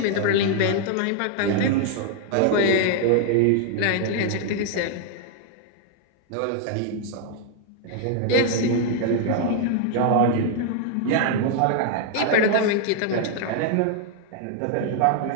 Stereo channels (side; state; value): both; different; correlation 0.00